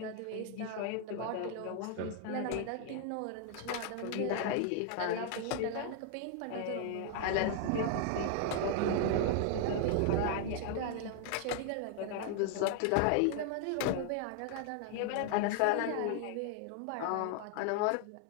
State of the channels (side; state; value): both; different; correlation 0.00